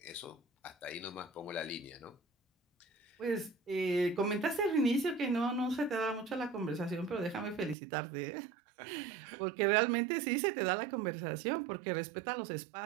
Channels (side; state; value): left; drops out; at 7.8 s